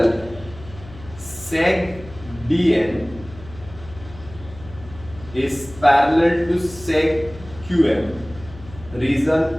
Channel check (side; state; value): left; noise; hum, 18 dB below the sound